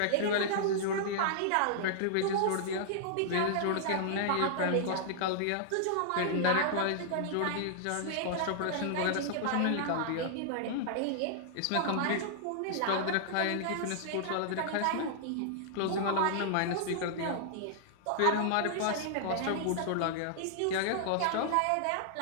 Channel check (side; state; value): both; different; correlation -0.01